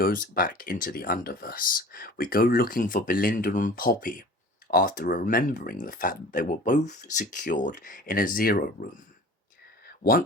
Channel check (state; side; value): normal; both; correlation 0.43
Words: back into the Underverse, we go looking for Belinda and Poppy after remembering the fact that they were both secured in a Zero Room.